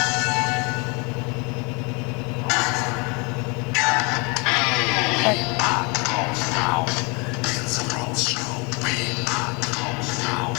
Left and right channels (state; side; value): quieter; right; 30.2 dB